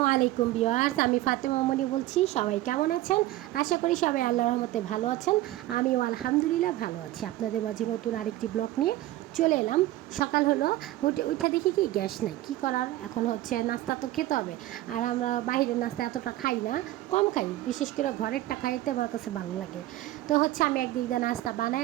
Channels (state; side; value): quieter; left; 15.7 dB